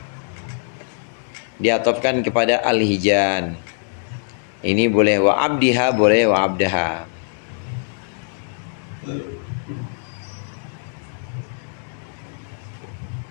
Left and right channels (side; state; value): right; silent; digital silence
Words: Diatofkan kepada al-hijan. Ini boleh, wa abdiha boleh, wa abdaha.